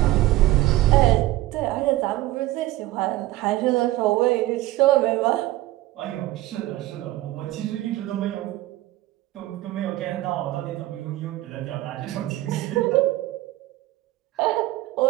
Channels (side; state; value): left; quieter; 16.5 dB